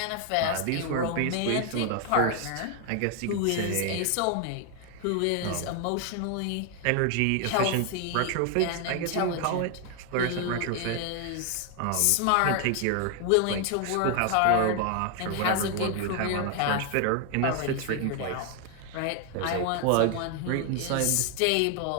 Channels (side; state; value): both; different; correlation 0.00